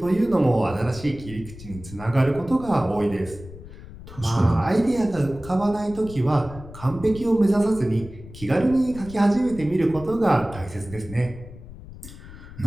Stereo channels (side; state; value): left; noise; rumble, 15 dB below the sound